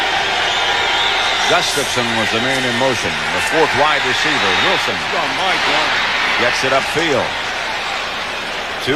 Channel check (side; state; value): both; identical; correlation 1.00